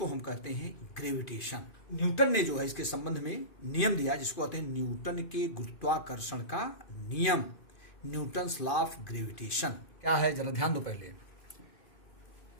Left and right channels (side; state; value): right; late; 2.4 ms